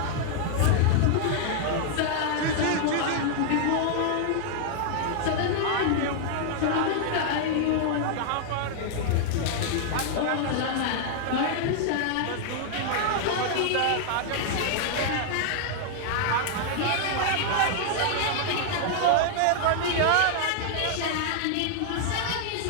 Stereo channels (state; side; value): different; both; correlation -0.01